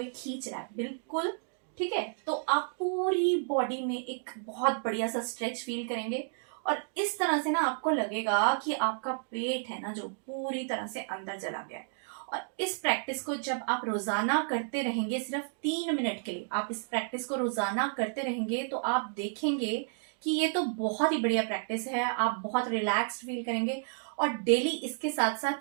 खींच रहा है, बिल्कुल, ठीक है। तो आप पूरी बॉडी में एक बहुत बढ़िया सा स्ट्रेच फील करेंगे और इस तरह से ना आपको लगेगा कि आपका पेट है ना जो पूरी तरह से अंदर चला गया है। और इस प्रैक्टिस को जब आप रोजाना करते रहेंगे, सिर्फ 3 मिनट के लिए आप इस प्रैक्टिस को रोजाना करते रहेंगे, तो आप देखेंगे कि ये तो बहुत ही बढ़िया प्रैक्टिस है, आप बहुत रिलैक्स्ड फील करेंगे। और डेली इसके साथ साथ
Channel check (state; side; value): silent; left; digital silence